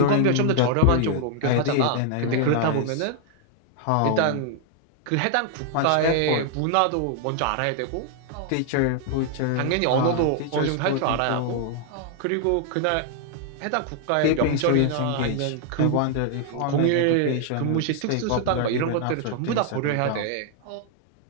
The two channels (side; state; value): both; different; correlation 0.00